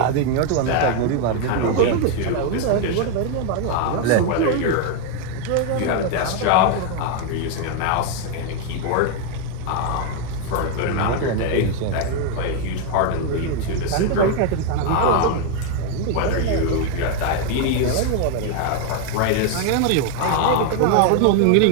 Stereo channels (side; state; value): both; different; correlation 0.01